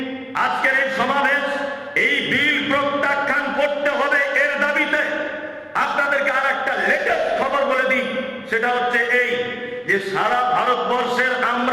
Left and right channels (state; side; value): identical; both; correlation 1.00